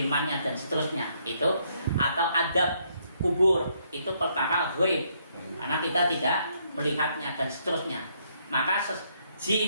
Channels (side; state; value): both; inverted; correlation -0.72